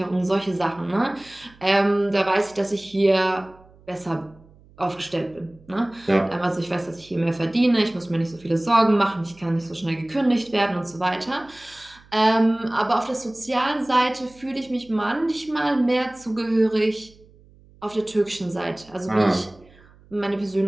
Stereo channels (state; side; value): noise; right; hum, 27 dB below the sound